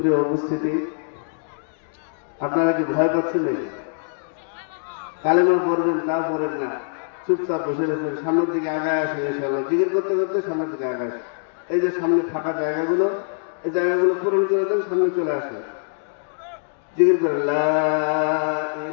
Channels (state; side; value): silent; right; digital silence